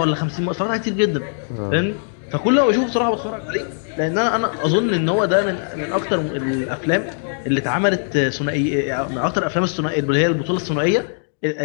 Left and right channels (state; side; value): silent; right; digital silence